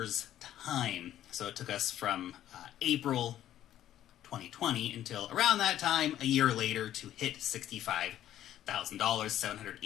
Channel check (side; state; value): right; quieter; 12.0 dB